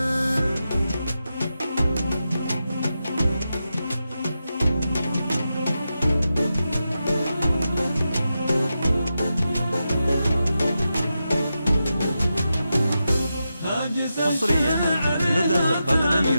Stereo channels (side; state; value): both; inverted; correlation -0.89